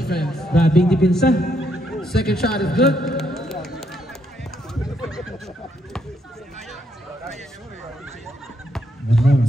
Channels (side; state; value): both; normal; correlation 0.75